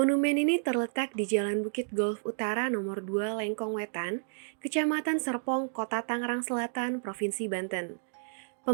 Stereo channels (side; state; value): left; silent; digital silence